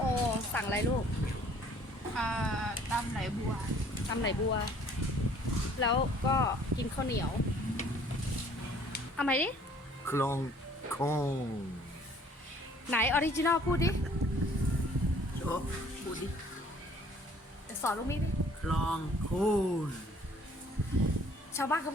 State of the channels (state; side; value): normal; both; correlation 0.56